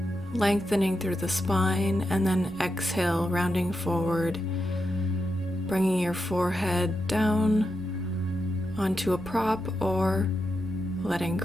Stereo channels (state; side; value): normal; both; correlation 0.87